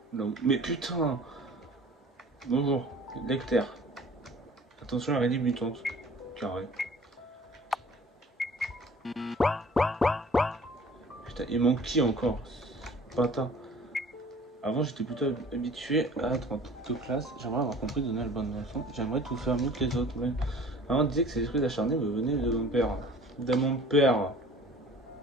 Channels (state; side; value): normal; both; correlation 0.48